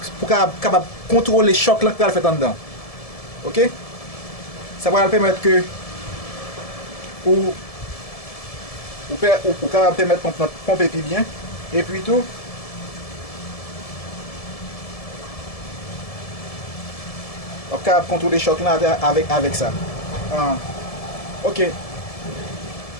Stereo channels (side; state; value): right; late; 1.7 ms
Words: pour capable contrôler le choc là qu'il fait en dedans. OK? Ça va permettre que pour permettre de pomper plus bien. Et puis tout, on peut contrôler choc là avec ça. Ok.